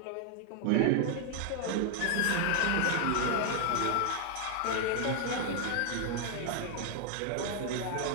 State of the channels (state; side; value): different; both; correlation 0.00